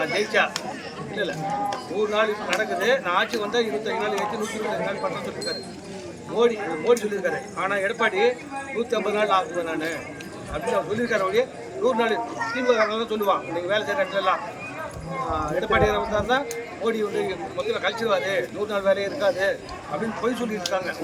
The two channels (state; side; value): identical; both; correlation 1.00